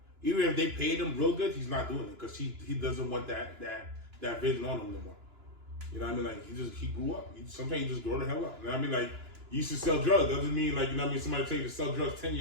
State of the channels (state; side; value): late; left; 2.9 ms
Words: Even if they paid him real good, he's not doing it because he doesn't want that vision on him no more. You know what I mean? Like he grew up. Sometimes you just grow the hell up. You know what I mean? Like you used to sell drugs. Doesn't mean like, you know what I mean, somebody tell you to sell drugs 10